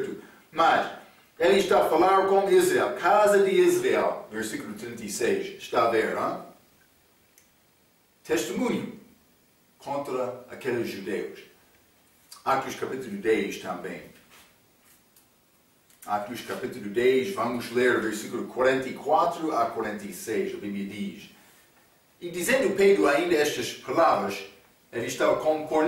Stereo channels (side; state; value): both; identical; correlation 1.00